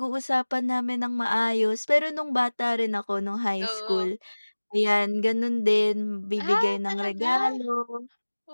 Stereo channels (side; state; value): both; inverted; correlation -1.00